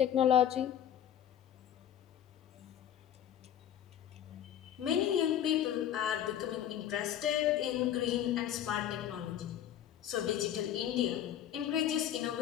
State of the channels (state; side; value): quieter; right; 10.6 dB